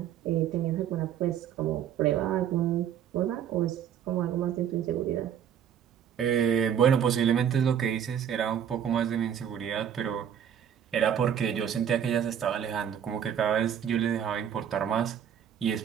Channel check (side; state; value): left; quieter; 9.0 dB